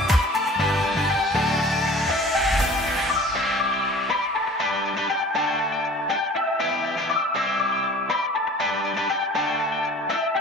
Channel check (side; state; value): both; normal; correlation 0.46